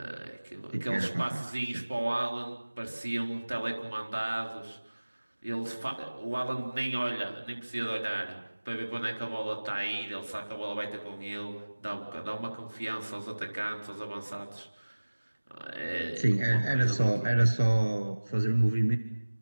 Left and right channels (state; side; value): inverted; both; correlation -1.00